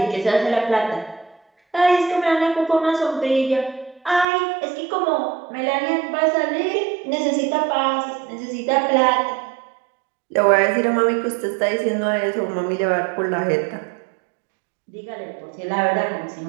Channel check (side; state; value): left; drops out; at 4.2 s